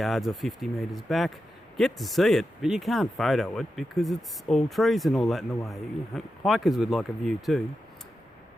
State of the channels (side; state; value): both; normal; correlation 0.90